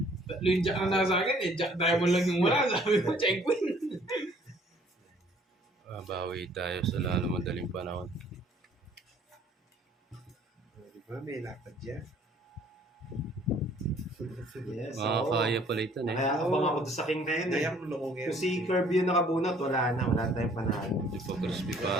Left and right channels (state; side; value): normal; both; correlation 0.58